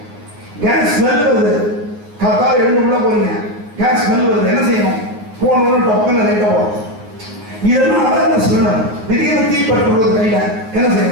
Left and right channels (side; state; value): left; late; 9.5 ms